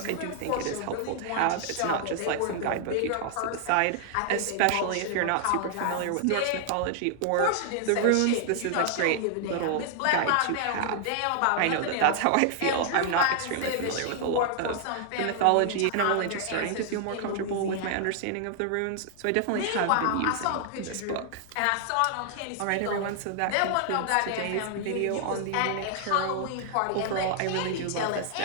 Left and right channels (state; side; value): different; both; correlation 0.00